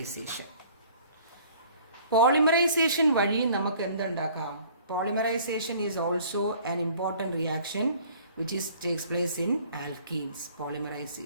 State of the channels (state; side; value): inverted; both; correlation -0.53